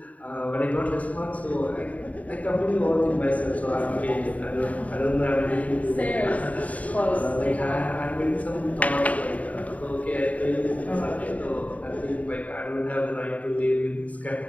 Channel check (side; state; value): right; late; 0.070 ms